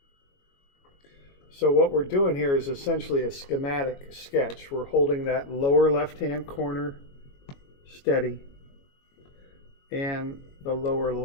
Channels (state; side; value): late; right; 22 ms